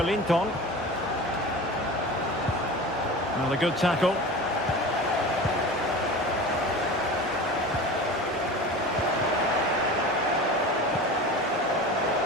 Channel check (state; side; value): normal; both; correlation 0.34